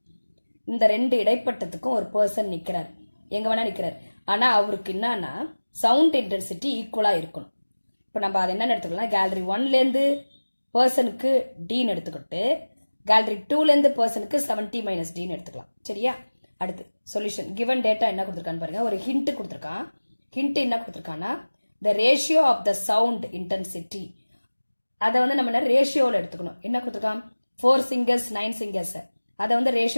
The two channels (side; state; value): both; inverted; correlation -1.00